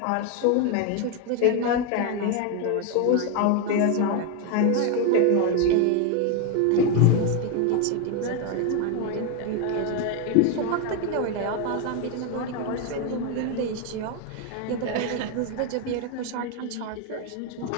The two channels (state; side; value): different; both; correlation 0.01